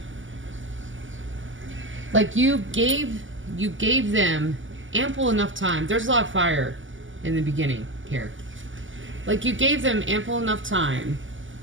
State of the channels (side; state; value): left; late; 0.56 ms